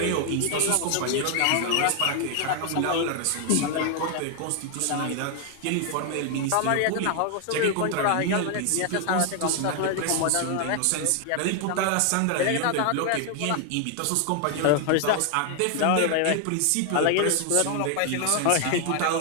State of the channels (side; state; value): both; different; correlation 0.00